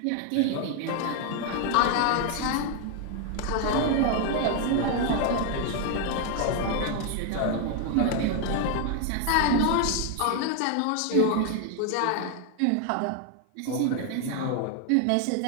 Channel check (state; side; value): different; both; correlation 0.00